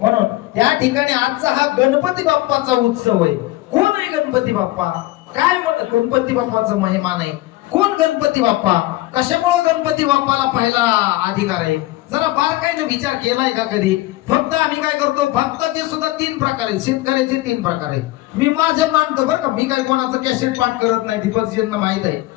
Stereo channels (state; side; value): quieter; right; 18.0 dB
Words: त्या ठिकाणी आजचा हा गणपती बाप्पाचा उत्सव आहे. कोण आहे गणपती बाप्पा? काय गणपती बाप्पाचा महिमा नाही? कोण गणपती बाप्पा? कशामुळे गणपती बाप्पाला पहिला अधिकार आहे? जरा बारकाईने विचार केलाय का कधी? फक्त आम्ही काय करतो, भक्ताचे सुद्धा 3 प्रकार आहेत, शेतकऱ्याचे 3 प्रकार आहेत. मी माझे मानतो बरं का, मी काय कोणाचं कॅसेट पाठ करत नाही, दीपकजींना माहित आहे.